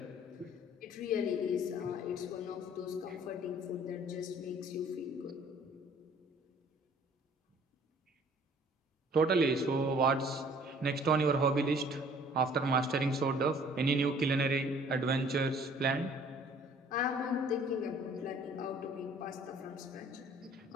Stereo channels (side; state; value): both; normal; correlation 0.55